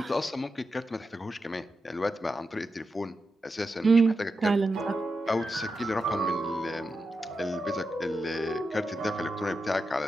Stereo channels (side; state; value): both; normal; correlation 0.89